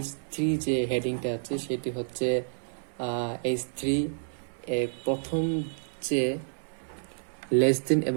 H3 যে হেডিংটা আছে সেটি হচ্ছে H3 প্রথম যে লেস দেন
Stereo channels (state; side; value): silent; left; 58 dB below the other